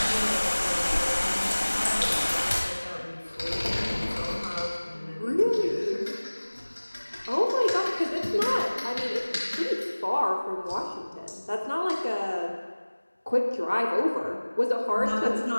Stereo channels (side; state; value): both; inverted; correlation -1.00